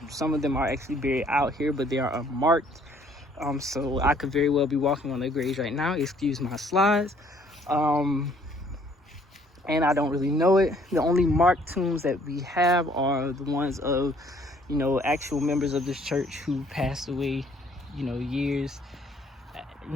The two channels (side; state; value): both; normal; correlation 0.61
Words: some of them are actually buried out here, but they are unmarked. So I could very well be walking on their graves right now. Excuse my slides. And I don't really know it. The only marked tombs that we have are the ones of, actual members of this church who passed away, years